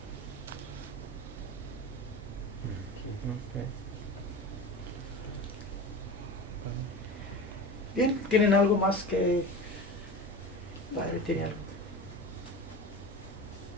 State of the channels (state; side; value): normal; both; correlation 0.31